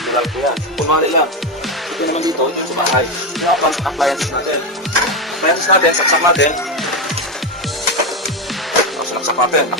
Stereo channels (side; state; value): both; normal; correlation 0.11